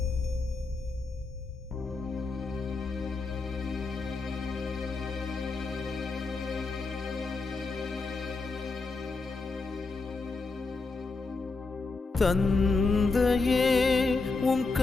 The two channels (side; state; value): right; quieter; 3.9 dB